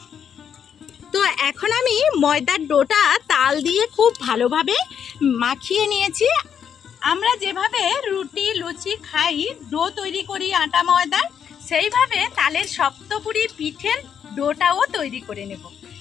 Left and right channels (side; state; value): right; quieter; 8.1 dB